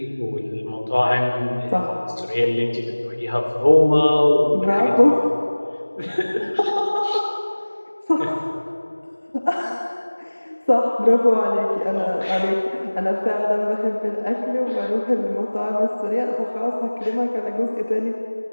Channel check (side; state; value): both; inverted; correlation -1.00